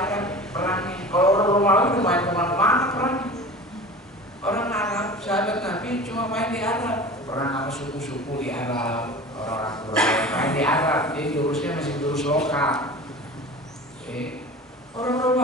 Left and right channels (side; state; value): both; normal; correlation 0.36